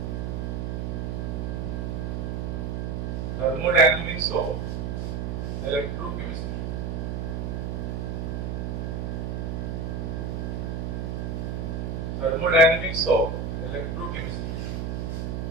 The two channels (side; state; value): right; noise; hum, 2 dB below the sound